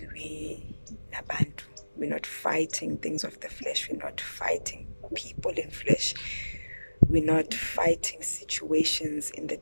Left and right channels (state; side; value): inverted; both; correlation -1.00